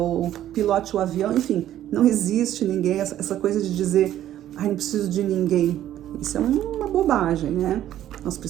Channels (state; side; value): quieter; left; 12.2 dB